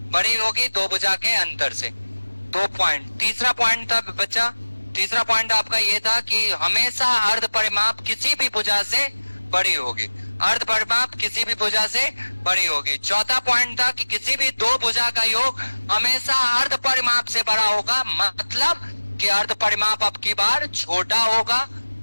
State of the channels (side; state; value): both; inverted; correlation -1.00